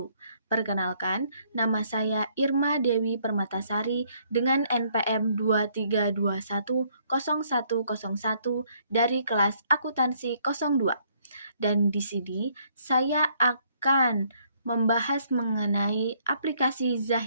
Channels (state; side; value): inverted; both; correlation -0.67